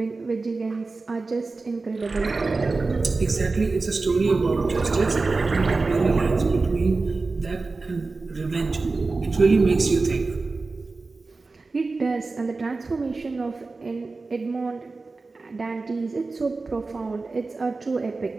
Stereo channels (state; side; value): quieter; left; 3.8 dB